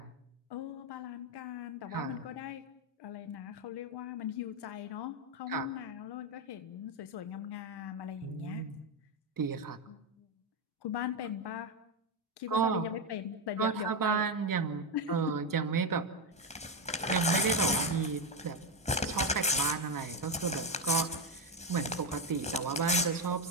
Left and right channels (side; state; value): both; normal; correlation 0.08